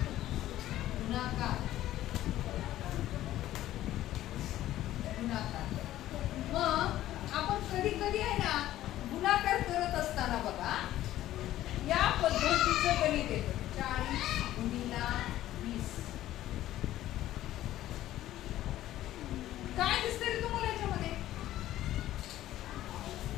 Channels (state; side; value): quieter; right; 13.9 dB